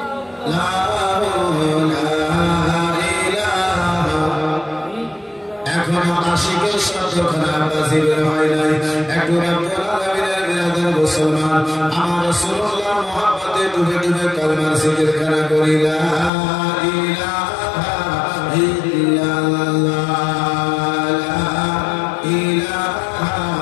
আশিকের শব্দখানা বাজির হয় নাই। একটু রব্বুল আলামিনের বিরাদর মুসলমান আমার রাসূলুল্লাহ মুহাম্মদে ডুবে ডুবে কালমার জিকিরখানা করি লা ইলাহা ইল্লাল্লাহ লা ইলাহা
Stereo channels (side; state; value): right; drops out; at 16.3 s